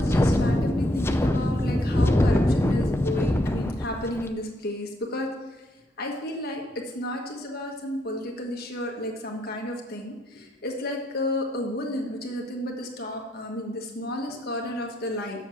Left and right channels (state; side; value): normal; both; correlation 0.74